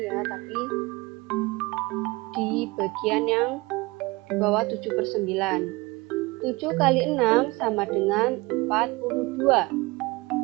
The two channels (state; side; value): quieter; left; 23.3 dB